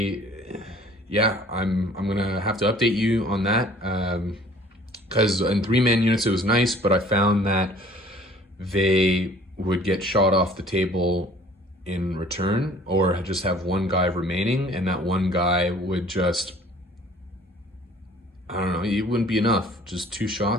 gonna have to update you on that, because in 3-man units it was nice, but I found that they would get shot off the table in return, or just have 1 guy remaining, and that 1 guy would just, I don't know, it wouldn't be enough. Just 2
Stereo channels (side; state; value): both; normal; correlation 0.52